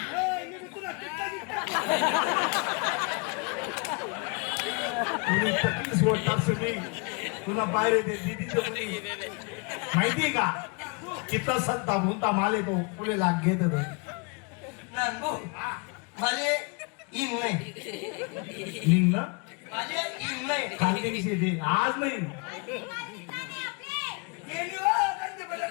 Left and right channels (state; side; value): quieter; right; 33.0 dB